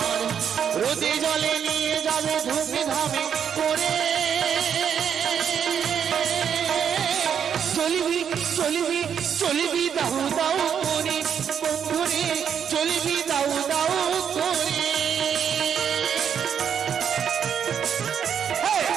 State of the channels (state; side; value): quieter; left; 8.0 dB